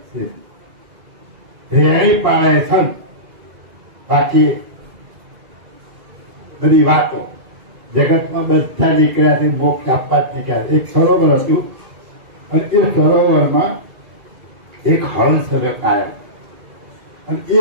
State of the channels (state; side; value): late; left; 2.3 ms